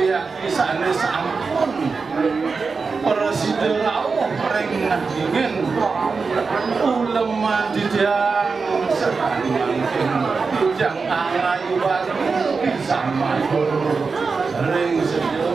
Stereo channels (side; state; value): left; quieter; 4.7 dB